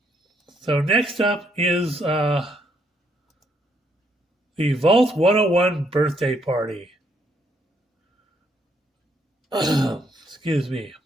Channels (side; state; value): both; normal; correlation 0.72